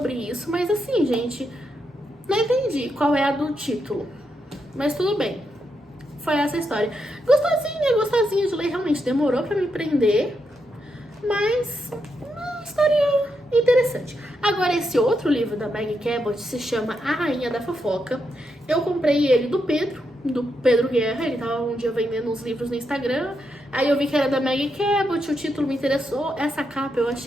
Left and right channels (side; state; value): both; normal; correlation 0.82